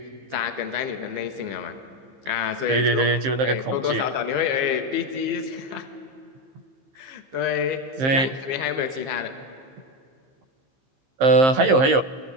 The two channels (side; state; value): left; late; 15 ms